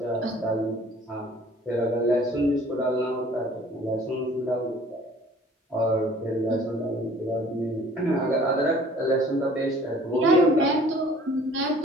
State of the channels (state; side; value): normal; both; correlation 0.52